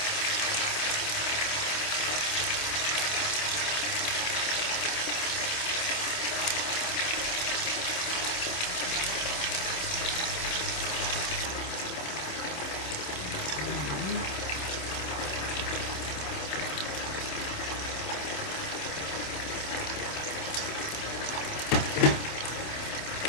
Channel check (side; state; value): right; late; 27 ms